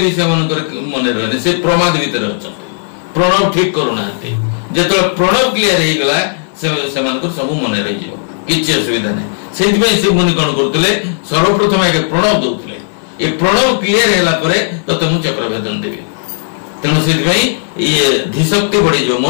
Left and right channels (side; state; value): right; silent; digital silence